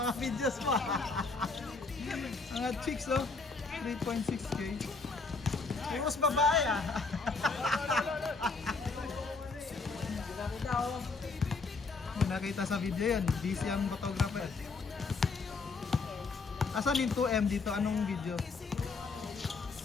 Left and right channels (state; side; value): quieter; right; 4.1 dB